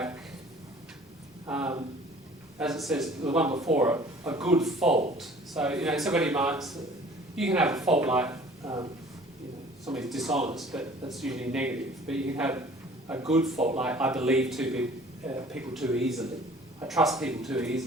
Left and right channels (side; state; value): both; normal; correlation 0.50